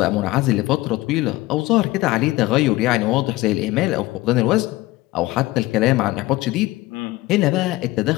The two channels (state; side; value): quieter; right; 18.8 dB